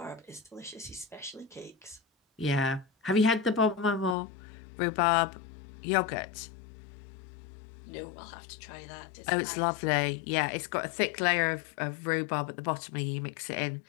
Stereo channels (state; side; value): drops out; right; at 4.2 s